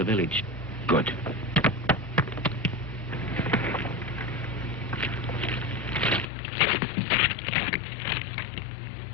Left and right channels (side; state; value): right; drops out; at 6.2 s